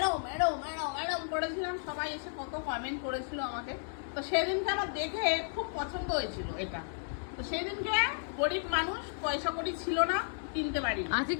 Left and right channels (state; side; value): silent; right; digital silence